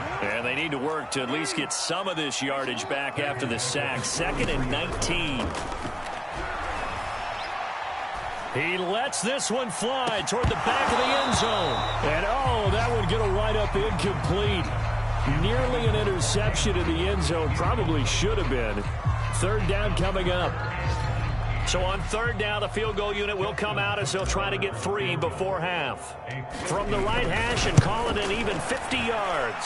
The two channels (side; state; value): both; identical; correlation 1.00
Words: And they need to work to at least get some of this yardage back after the sack. 2nd and 19. He lets this one fly toward the back of the end zone. And, oh, that one going to wind up incomplete. Nearly an interception in the end zone. Probably should have been. Third down coming up. So on third down, the field goal unit will come out as they'll try to get 3 before half. From the right hash and call it an even 50 yards.